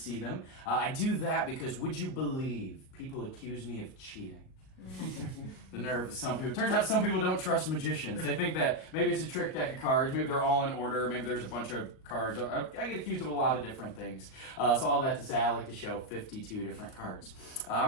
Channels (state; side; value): late; right; 38 ms